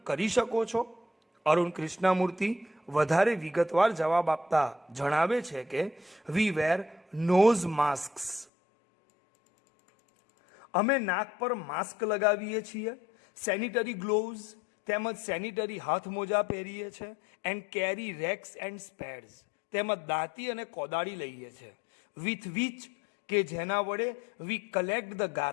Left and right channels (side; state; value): right; drops out; at 8.5 s